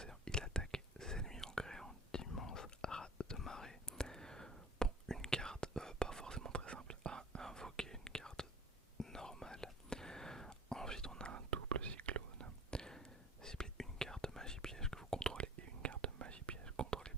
Il attaque ses ennemis en créant d'immenses rats de marée. Bon, une carte pas forcément très simple à invoquer, une carte normale. Ensuite, on a un double cyclone. Ciblez une carte magie piège que vous contrôlez et une carte magie piège contrôlée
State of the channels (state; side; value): normal; both; correlation 0.44